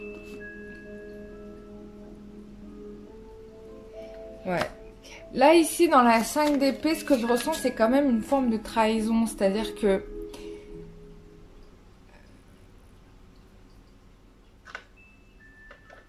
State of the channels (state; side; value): identical; both; correlation 1.00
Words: Ouais. Là, ici, dans la 5 d'épée, ce que je ressens, c'est quand même une forme de trahison. C'est-à-dire que...